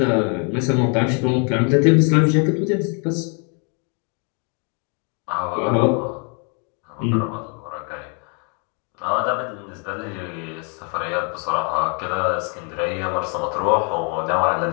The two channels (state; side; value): quieter; right; 37.8 dB